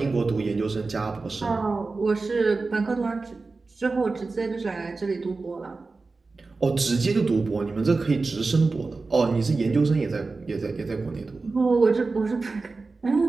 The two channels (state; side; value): quieter; left; 3.9 dB